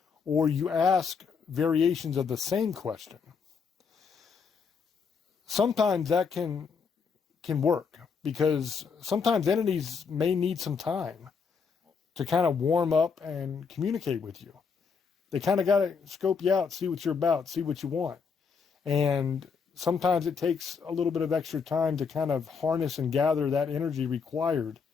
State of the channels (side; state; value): right; quieter; 5.7 dB